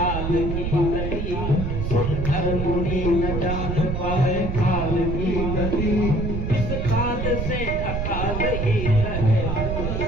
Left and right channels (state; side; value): noise; right; rumble, 2 dB below the sound